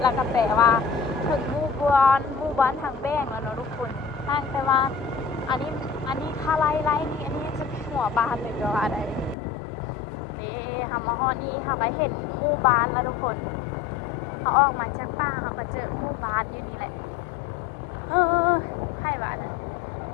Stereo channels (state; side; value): drops out; right; at 9.3 s